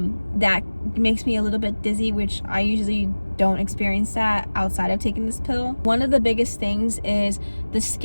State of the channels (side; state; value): both; inverted; correlation -1.00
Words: makes me a little bit dizzy, which I usually don't experience that outside of taking this pill. One of the biggest things is the